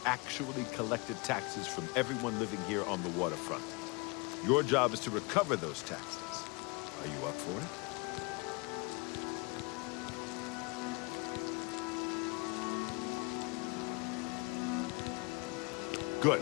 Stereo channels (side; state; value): right; quieter; 27.7 dB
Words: actually collected taxes from everyone living here on the waterfront. Your job is to recover those taxes. Are you up for it? Good.